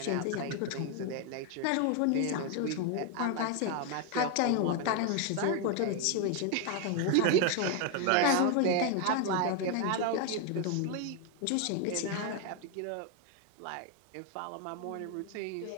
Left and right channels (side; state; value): both; different; correlation 0.01